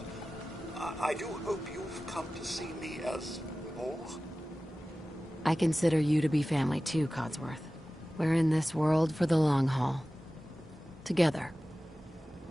I do hope you've come to see me as more. I consider you to be family too, Codsworth. We're in this world for the long haul. Together.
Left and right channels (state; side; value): normal; both; correlation 0.96